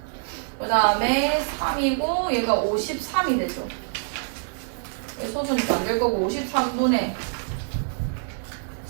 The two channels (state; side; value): silent; left; digital silence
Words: 그 다음에 3이고 얘가 53이 되죠. 소수니까 안 될 거고 53분의